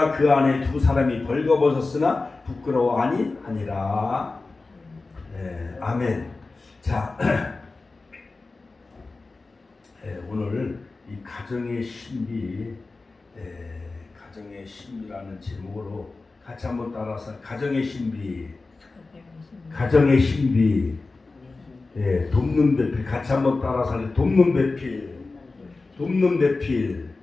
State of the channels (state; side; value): quieter; right; 3.6 dB